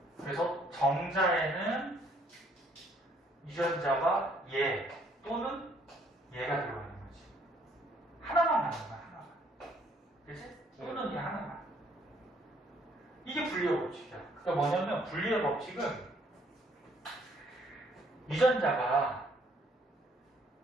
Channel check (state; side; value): normal; both; correlation 0.64